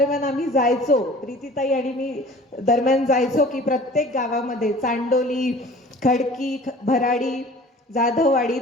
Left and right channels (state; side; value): normal; both; correlation 0.46